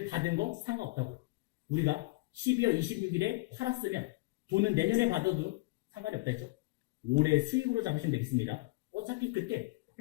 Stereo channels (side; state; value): right; quieter; 23.4 dB